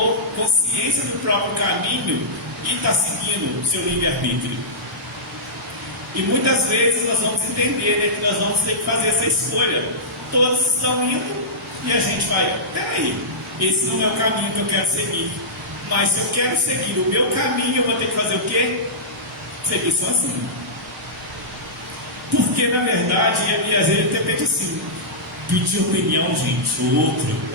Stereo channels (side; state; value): both; normal; correlation -0.16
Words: consciência do próprio caminho e está seguindo o seu livre-arbítrio. E muitas vezes nós vamos entender, né, que nós vamos ter que fazer essa escolha. Todos estão indo e a gente vai, peraí, esse não é o caminho que eu quero seguir. Mas se eu quero seguir o meu caminho, eu vou ter que fazer o quê? Seguir sozinho. Porque na verdade, e às vezes até pede assim, pedir opinião, gente, o outro,